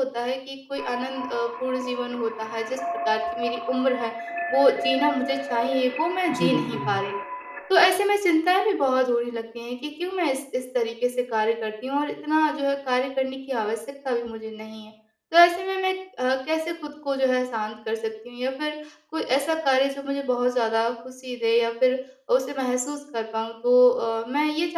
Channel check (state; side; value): identical; both; correlation 1.00